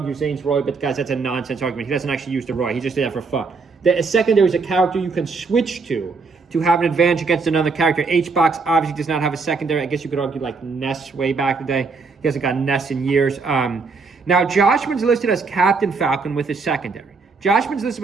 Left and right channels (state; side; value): quieter; left; 4.5 dB